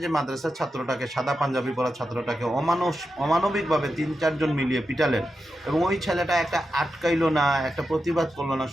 যে মাদ্রাসার ছাত্রটাকে, সাদা পাঞ্জাবি পরা ছাত্রটাকে অমানবিকভাবে 3-4 জন মিলিয়ে পিটালেন, এবং ওই ছেলেটা একটা আটকাইলো না, একটা প্রতিবাদ করলো না,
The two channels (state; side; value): normal; both; correlation 0.89